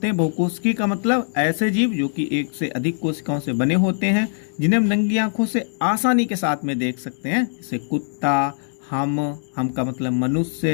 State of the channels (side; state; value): right; silent; digital silence